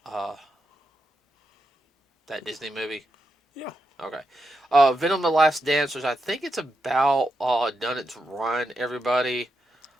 that Disney movie? Yeah, Okay. Venom: The Last Dance, which I think it's about done its run. Everybody.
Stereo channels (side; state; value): both; normal; correlation 0.85